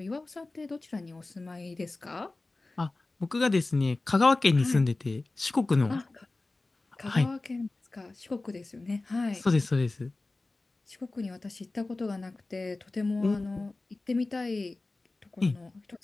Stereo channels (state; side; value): quieter; right; 3.2 dB